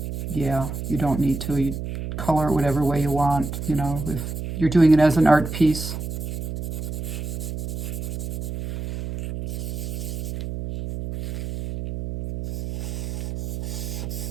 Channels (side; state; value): right; noise; hum, 5 dB below the sound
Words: yeah, you don't need to. You color it whatever way you want, you know, if you're doing it as an art piece.